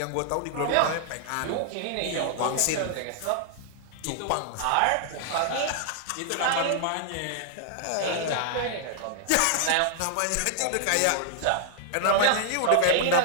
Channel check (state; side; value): different; both; correlation -0.01